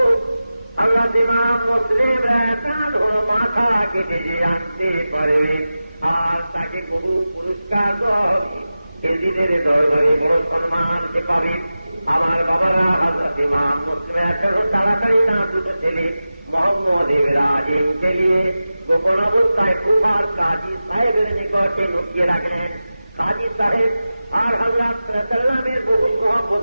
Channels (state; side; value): inverted; both; correlation -0.94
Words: আল্লাহ ইমাম মুসলিম মাথা কেটে যে আনতে পারে আর তাকে বহু পুরস্কার এদিনের দরবারে বড় সম্মান সে পাবে। আমার বাবারা, হযরত ইমাম মুসলিম তাড়াতাড়ি না দুটো ছেলে মোহাম্মদ ইব্রাহিমকে নিয়ে গোপন অবস্থায় কুফার কাজী সাহেবের নিকটে লুকিয়ে রাখলেন। কাজী সাহেব আর হযরত সাল্লামের বহু মহব্বত